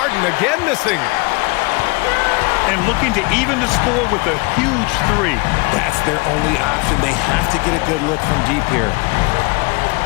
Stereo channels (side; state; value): right; quieter; 27.4 dB